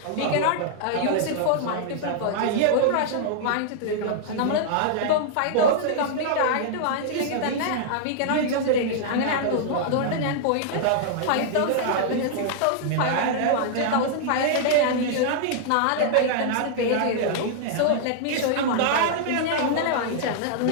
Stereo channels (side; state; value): both; different; correlation -0.01